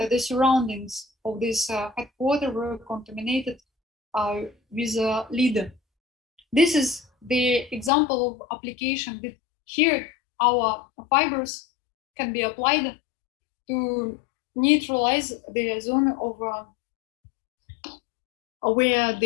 The surroundings of this headquarters were contaminated with lead. This is the example of application that here our fibers can be applied to neutralize the zone of where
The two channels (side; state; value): right; drops out; at 7.9 s